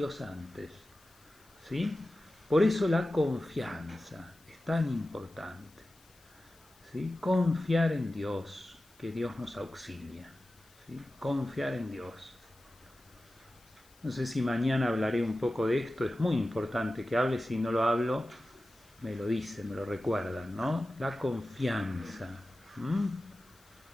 antes. O ¿sí? Por eso la confianza es tan importante, ¿sí? Confiar en Dios, que Dios nos auxilia, ¿sí? Confiar en Dios. No sé si mañana hablaré un poco de esto, es muy importante que hable, si no lo hablo, me lo dicen, me lo recuerdan, ¿no? La confianza.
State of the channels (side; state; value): left; noise; hiss, 28 dB below the sound